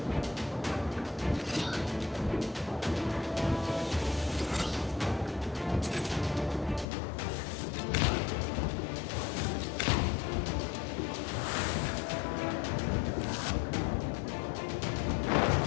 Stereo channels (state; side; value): drops out; right; at 6.9 s